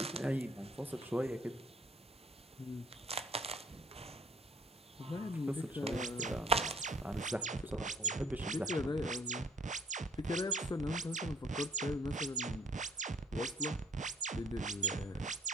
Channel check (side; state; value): both; normal; correlation 0.59